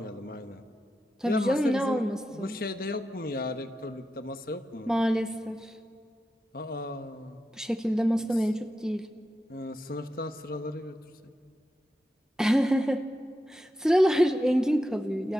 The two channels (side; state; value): both; normal; correlation 0.89